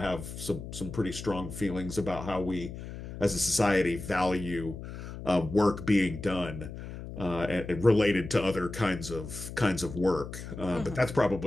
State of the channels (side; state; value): left; noise; hum, 10 dB below the sound